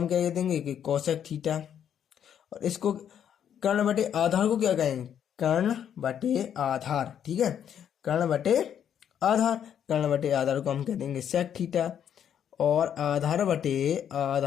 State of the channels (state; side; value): quieter; right; 9.1 dB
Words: क्या कह देंगे कि कोसेक थीटा, और इसको कर्ण बटे आधार को क्या कहेंगे, कर्ण बटे आधार। ठीक है, कर्ण बटे आधार, कर्ण बटे आधार को हम कह देंगे सेक थीटा, और आधार बटे